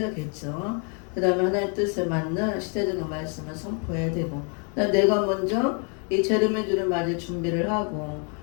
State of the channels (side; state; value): right; quieter; 38.4 dB